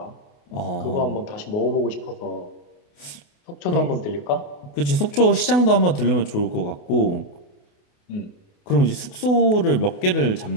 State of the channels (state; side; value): late; right; 28 ms